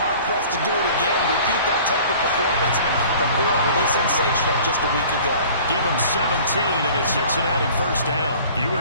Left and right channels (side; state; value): both; inverted; correlation -0.47